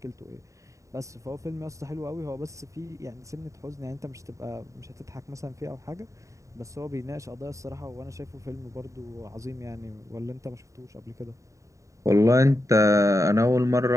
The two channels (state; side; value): late; left; 0.15 ms